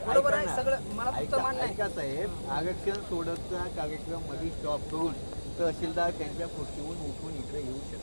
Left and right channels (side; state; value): both; inverted; correlation -1.00